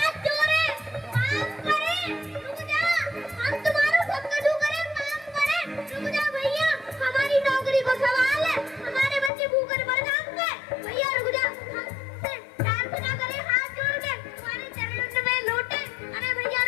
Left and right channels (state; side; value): drops out; right; at 9.3 s